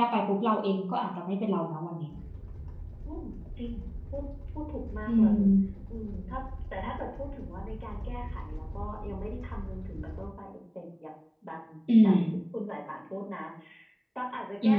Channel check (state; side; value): identical; both; correlation 1.00